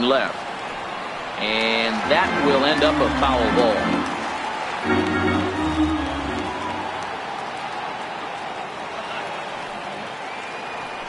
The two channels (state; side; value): identical; both; correlation 1.00